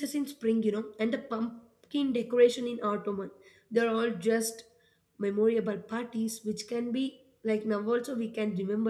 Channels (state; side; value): identical; both; correlation 1.00